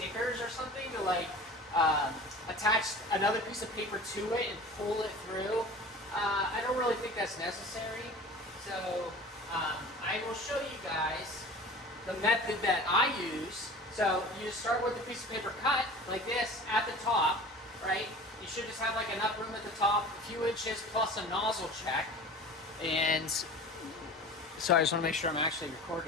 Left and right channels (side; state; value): both; normal; correlation 0.39